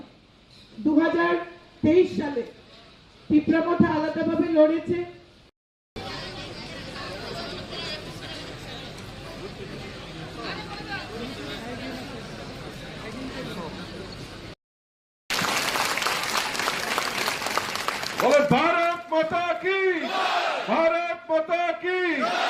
2023 সালে তীব্রমথা আলাদাভাবে লড়েছে। বলে ভারত মাতা কি, ভারত মাতা কি,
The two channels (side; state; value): both; identical; correlation 1.00